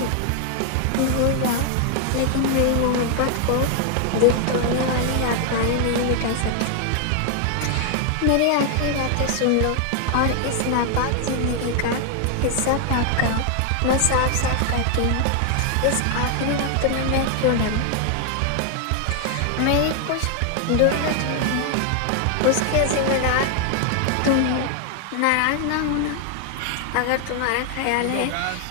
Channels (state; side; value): different; both; correlation 0.00